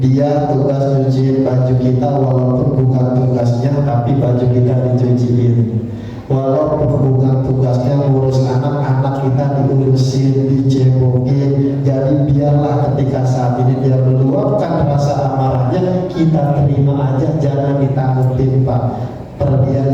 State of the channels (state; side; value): identical; both; correlation 1.00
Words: tugas cuciin baju kita, walaupun bukan tugasnya tapi baju kita dicuciin, walaupun bukan tugasnya ngurus anak-anak kita diurusin, dicebokin. Jadi biarlah ketika saat ini dia meluapkan rasa amarahnya, kita terima aja, jangan ditanggepin Pak, pergi